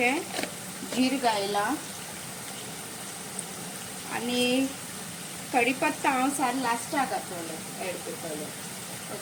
जीर घायला आनी कढीपत्ता हांव सार लास्टाक घातलें एड करतलें.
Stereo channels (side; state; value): both; identical; correlation 1.00